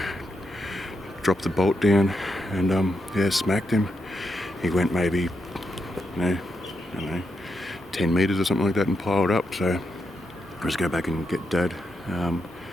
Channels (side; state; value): both; normal; correlation 0.83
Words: dropped the bolt down and smacked him. He went maybe I don't know, 10 meters or something like that and piled up. So I'll just go back and get Dad. I